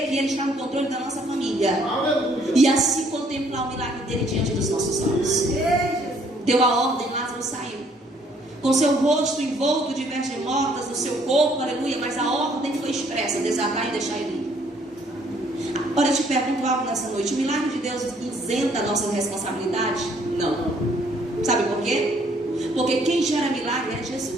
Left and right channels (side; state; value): both; normal; correlation 0.64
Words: que Ele está no controle da nossa família. E assim contemplar o milagre dele diante dos nossos olhos. Deu a ordem, Lázaro saiu, com seu rosto envolto de vestes mortas no seu corpo, aleluia. Mas a ordem foi expressa: desatar e deixar ele ir. Agora eu te pergunto algo nessa noite: o milagre de Deus isenta a nossa responsabilidade? Não. Sabe por quê? Porque quem gera milagre é